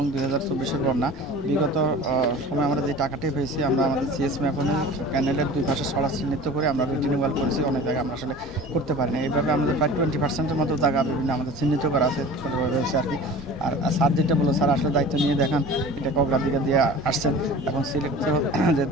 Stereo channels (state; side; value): normal; both; correlation 0.40